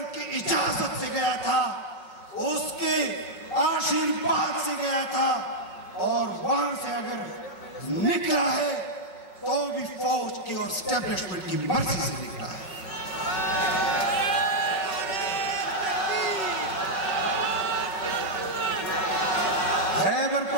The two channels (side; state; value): right; late; 5.4 ms